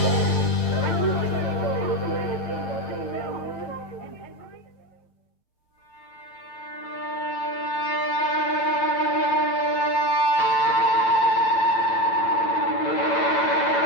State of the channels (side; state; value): right; late; 8.9 ms